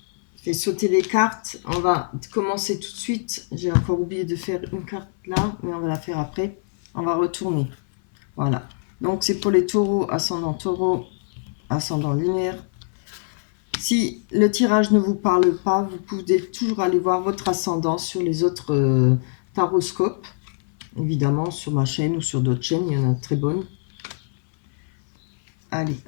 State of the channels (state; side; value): silent; right; 60 dB below the other